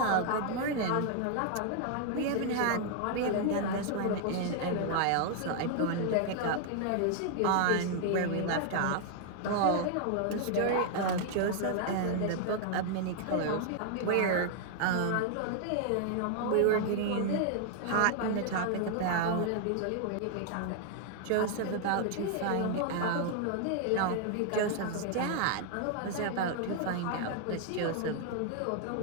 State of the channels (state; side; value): different; both; correlation 0.00